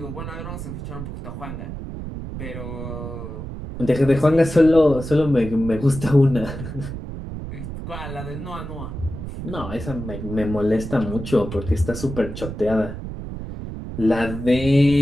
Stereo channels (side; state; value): right; noise; rumble, 8 dB below the sound